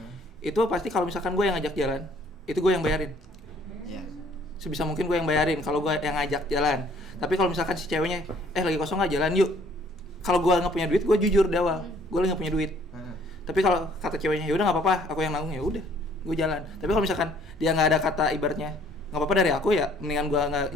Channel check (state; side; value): normal; both; correlation 0.59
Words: itu pasti kalau misalkan gue yang ngajak jalan, itu gue yang bayarin. Iya. Sebisa mungkin gue yang bayarin kalau gue yang ngajak jalan. Tapi kalau misalkan si ceweknya lagi kosong nggak jalan yuk, kalau gue nggak punya duit, gue jujur di awal, gue lagi nggak punya duit. Tapi kalau kata ceweknya ya udah nggak apa-apa, aku yang nanggung, ya udah gue jalan. Tapi kalau misalkan dia nggak ada kata ibaratnya nggak apa-apa dari aku, ya mendingan gue